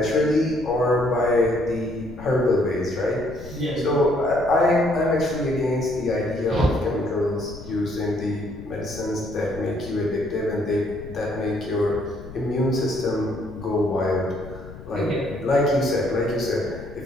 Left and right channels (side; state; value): left; noise; rumble, 15 dB below the sound